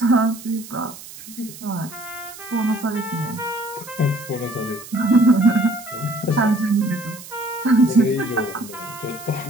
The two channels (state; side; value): noise; right; hiss, 16 dB below the sound